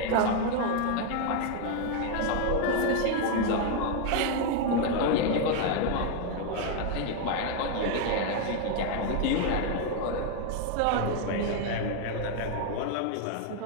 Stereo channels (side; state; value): both; different; correlation 0.01